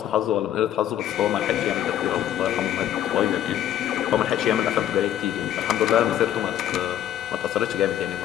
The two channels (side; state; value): right; quieter; 11.4 dB